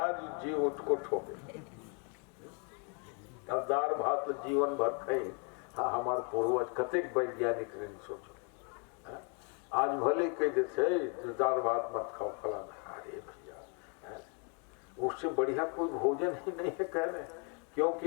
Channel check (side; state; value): right; quieter; 36.6 dB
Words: जी उसको ठोके। अब दाल भात तो जीवन भर खाई। हाँ हमारे पूर्वज कतेक वैज्ञानिक ने सोचो, आज भले कह देते दाल भात मत खाओ फलाना, अरे भैया उससे बढ़िया कोई भोजन ही नहीं है कह रहे,